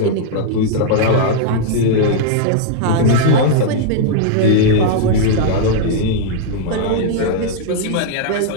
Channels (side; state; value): both; different; correlation -0.01